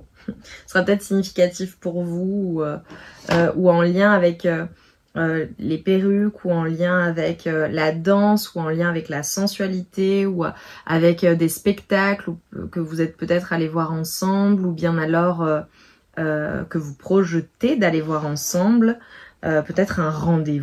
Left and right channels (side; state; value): both; identical; correlation 1.00